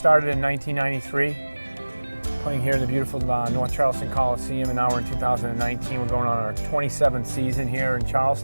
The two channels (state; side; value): inverted; both; correlation -1.00